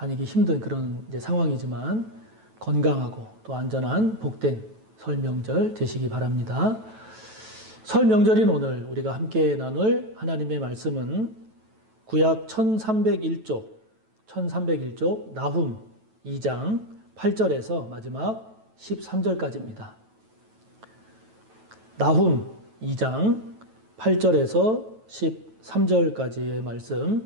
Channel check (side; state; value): left; late; 9.2 ms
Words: 힘든 그런 상황이지만 건강하고 또 안전한 복된 설 명절 되시기 바랍니다. 설 명절인 오늘 우리가 함께 나눌 하나님의 말씀은 구약 1301쪽 나훔 2장 8절에서 마지막 13절까지입니다. 나훔 2장 8절에서 13절까지의